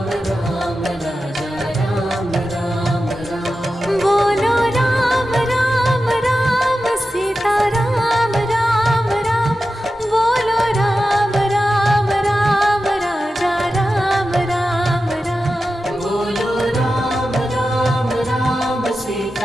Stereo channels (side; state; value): both; normal; correlation 0.92